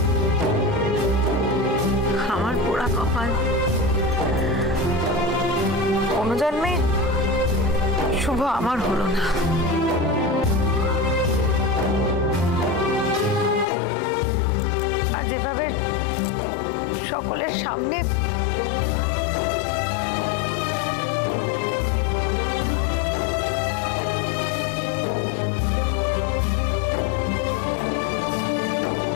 আমার পোড়া কপাল, কোনো জন্মে শুভ আমার হলো না। আর যেভাবে সকলের সামনে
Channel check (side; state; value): right; drops out; at 13.7 s